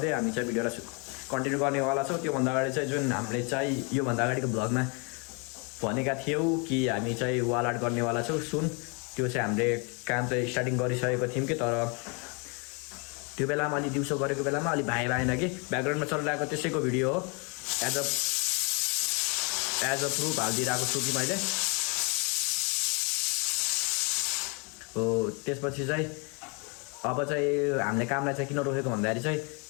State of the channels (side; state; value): right; quieter; 33.5 dB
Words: हामी चाहिँ भिडियोलाई कन्टिन्यू गर्नेवाला छौँ। त्योभन्दा अगाडि चाहिँ जुन हामीले चाहिँ योभन्दा अगाडिको ब्लगमा भनेका थियौँ कि हामी चाहिँ वाल आर्ट गर्नेवाला छौँ सुन, त्यो चाहिँ हामीले काम चाहिँ स्टार्टिङ गरिसकेको थियौँ कि, तर त्यो बेलामा अलि दिउँसो गरेको बेलामा अलि भएन कि ब्याकग्राउन्डमा चलिरहेको त्यसैको भिडियो हो। एज अ प्रुफ हालिदिइरहेको छु कि मैले हो। त्यसपछि चाहिँ अब चाहिँ हामीले कामलाई चाहिँ किन रोकेको भन्दाखेरि चाहिँ